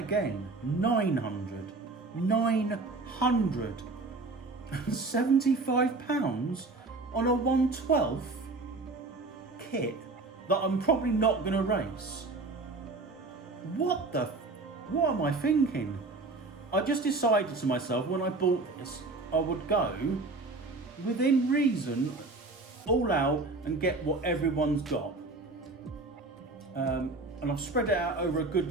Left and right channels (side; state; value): left; quieter; 3.4 dB